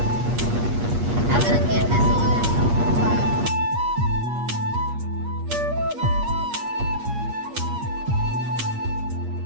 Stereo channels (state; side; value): late; left; 8.4 ms